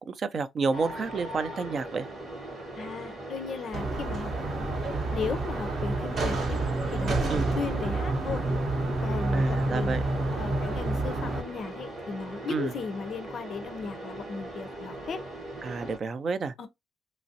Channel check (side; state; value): both; normal; correlation 0.82